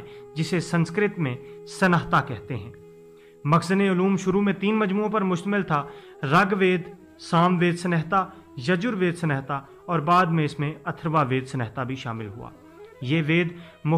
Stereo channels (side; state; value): both; identical; correlation 1.00